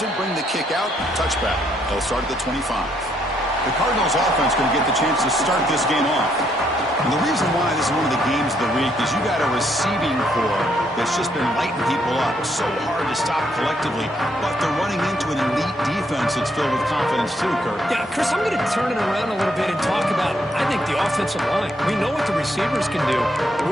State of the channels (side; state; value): both; normal; correlation 0.73